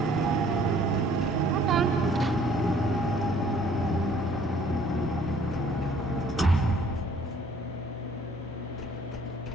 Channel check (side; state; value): both; normal; correlation 0.58